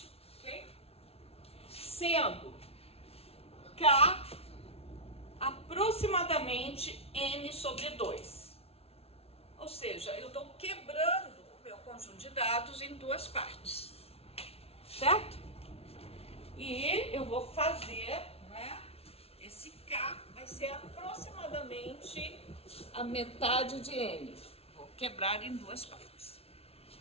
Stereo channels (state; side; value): late; right; 0.29 ms